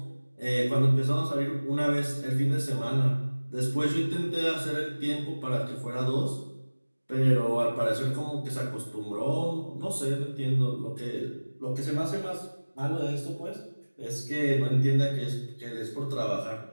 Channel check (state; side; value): inverted; both; correlation -1.00